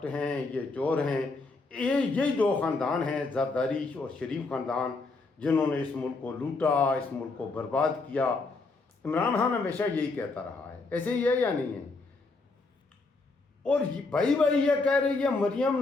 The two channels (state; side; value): quieter; right; 3.7 dB